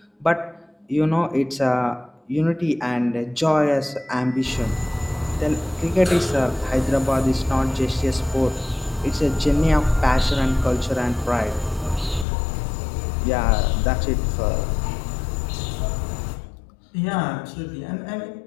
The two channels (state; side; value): drops out; right; at 12.2 s